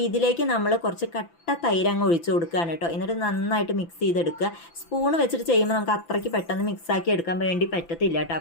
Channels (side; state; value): right; late; 5.9 ms